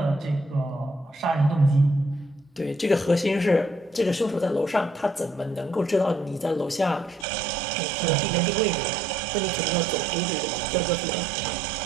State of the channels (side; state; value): left; drops out; at 7.2 s